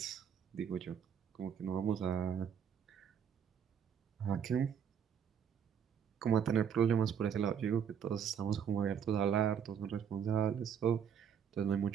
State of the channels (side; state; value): left; quieter; 8.0 dB